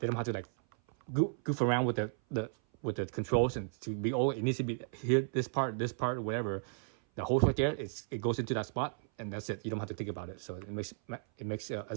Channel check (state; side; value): silent; left; 55 dB below the other